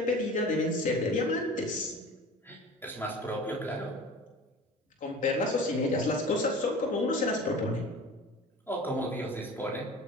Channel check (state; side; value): normal; both; correlation 0.39